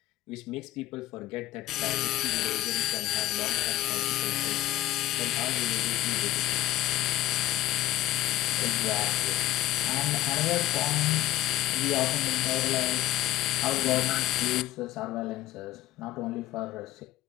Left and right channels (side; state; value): right; quieter; 15.2 dB